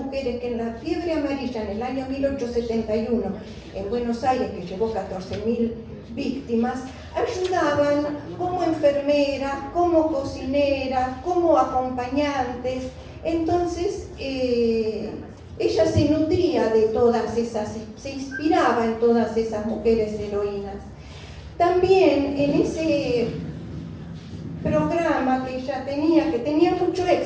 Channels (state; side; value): identical; both; correlation 1.00